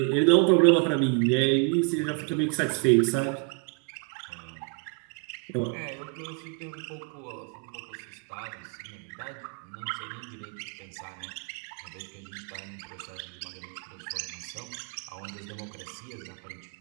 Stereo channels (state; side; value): quieter; left; 36.2 dB